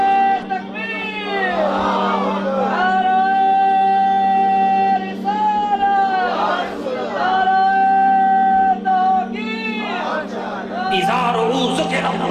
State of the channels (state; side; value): identical; both; correlation 1.00